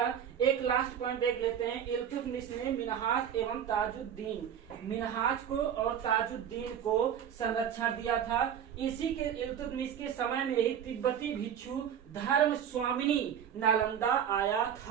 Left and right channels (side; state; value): left; quieter; 8.9 dB